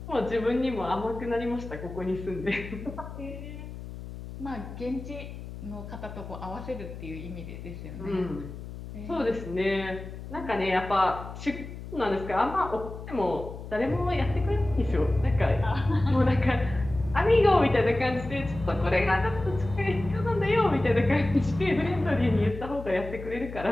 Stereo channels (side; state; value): left; noise; hum, 11 dB below the sound